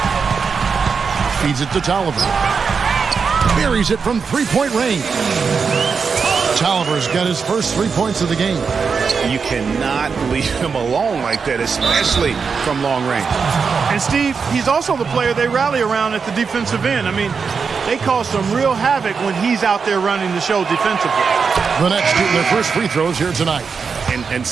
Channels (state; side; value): quieter; left; 5.6 dB